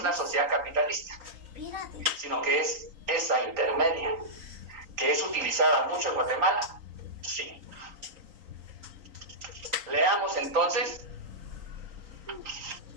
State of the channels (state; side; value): late; left; 3.8 ms